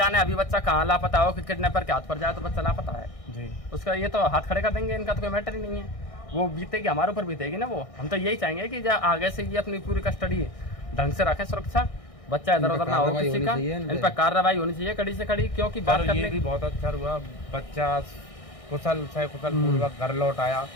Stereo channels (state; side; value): late; right; 1.6 ms